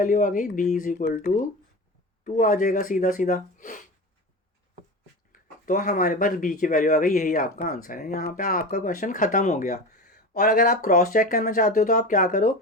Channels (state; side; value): normal; both; correlation 0.28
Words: आ गई? b इज इक्वल टू 2 आ जाएगा सीधा सीधा। तो हमारे पास b की वैल्यू आ गई, यही आपका आंसर है। यहाँ पे आपका क्वेश्चन ख़त्म हो गया। और अगर आप क्रॉस चेक करना चाहते हो तो आप क्या करो?